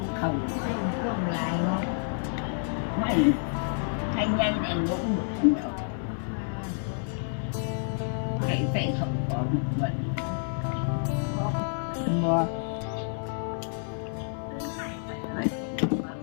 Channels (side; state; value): right; silent; digital silence